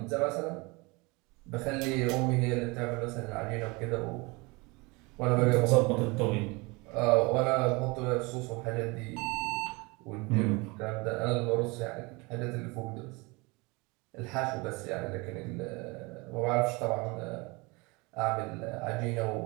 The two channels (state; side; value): quieter; left; 26.2 dB